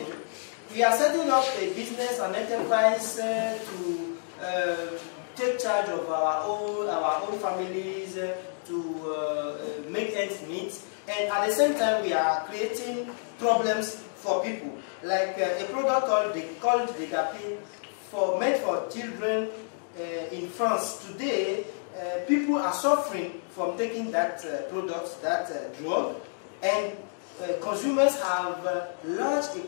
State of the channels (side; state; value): right; silent; digital silence